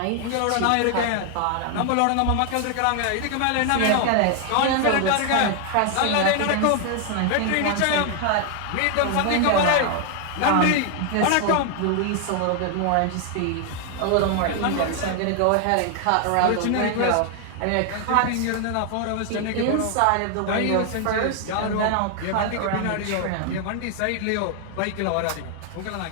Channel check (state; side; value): different; both; correlation 0.00